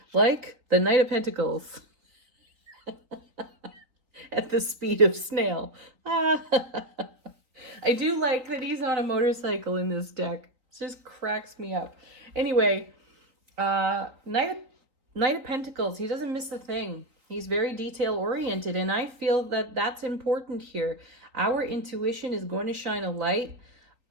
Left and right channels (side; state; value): left; late; 3.9 ms